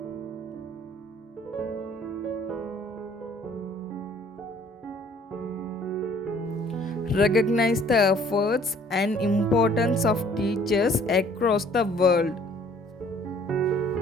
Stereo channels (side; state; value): both; normal; correlation 0.57